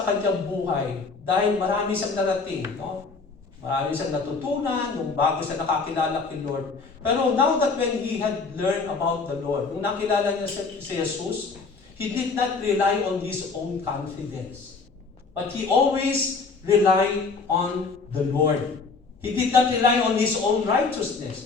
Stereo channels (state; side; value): quieter; right; 4.4 dB